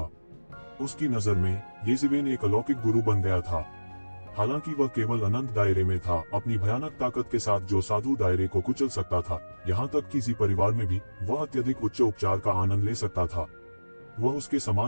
उसकी नजर में ये जीवेन एक अलौकिक गुरु बन गया था। हालांकि वह केवल अनंत दायरे में था, अपनी भयानक ताकत के साथ जो साधु दायरे को कुचल सकता था। यहाँ तक कि जी परिवार में भी वह अत्यधिक उच्च उपचार का आनंद ले सकता था। वह उसके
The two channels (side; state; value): both; inverted; correlation -1.00